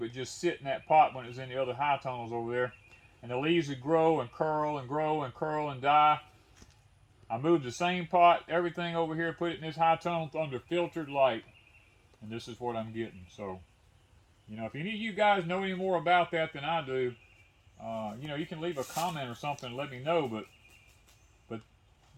just sit in that pot when it was in the other high tunnels over there. And the leaves would grow and curl and grow and curl and die. I moved the same pot, everything over here, put it in this high tunnel under filtered light. And this is what I'm getting. So, you know, if any of you guys know any more about that than I do, you know, you can leave a comment or something and let me know. But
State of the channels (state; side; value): identical; both; correlation 1.00